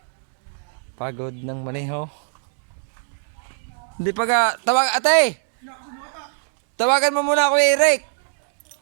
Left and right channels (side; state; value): left; silent; digital silence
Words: Pagod ng maneho. Hindi pa ka, ate! Tawagan mo muna Kuya Eric.